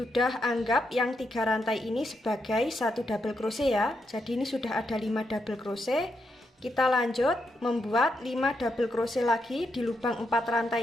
anggap yang 3 rantai ini sebagai 1 double crochet ya. Jadi ini sudah ada 5 double crochet. Kita lanjut membuat 5 double crochet lagi di lubang 4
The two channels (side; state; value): both; normal; correlation 0.82